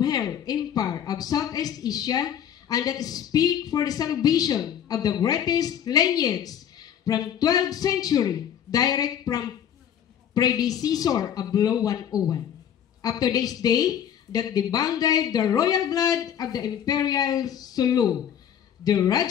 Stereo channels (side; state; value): right; quieter; 9.4 dB